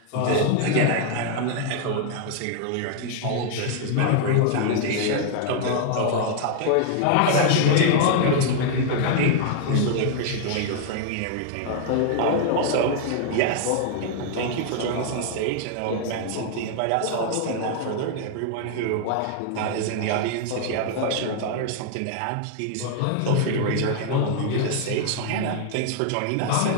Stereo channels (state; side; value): different; both; correlation 0.00